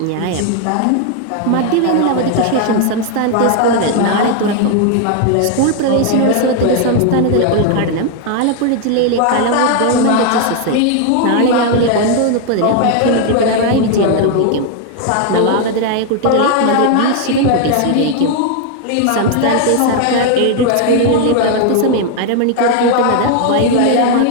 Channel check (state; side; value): different; both; correlation 0.00